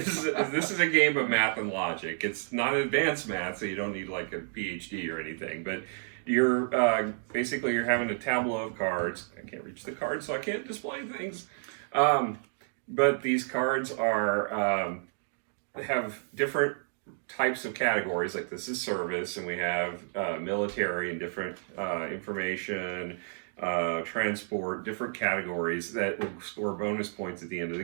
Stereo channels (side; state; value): left; silent; digital silence